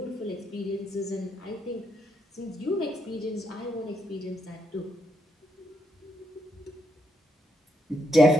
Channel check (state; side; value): normal; both; correlation 0.79